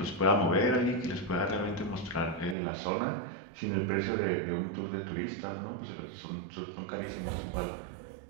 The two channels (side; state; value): left; drops out; at 2.6 s